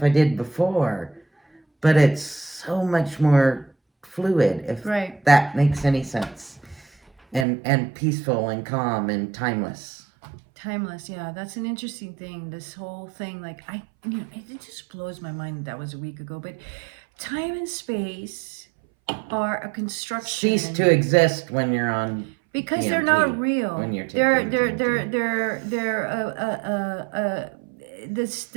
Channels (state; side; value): drops out; left; at 7.5 s